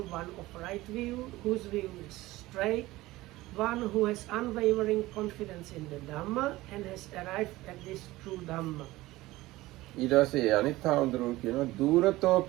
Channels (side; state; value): left; quieter; 18.3 dB